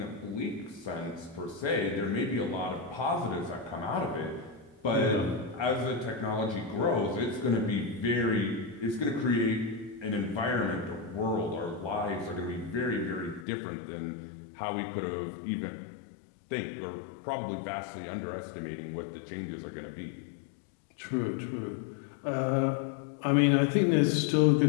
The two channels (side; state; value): right; drops out; at 13.5 s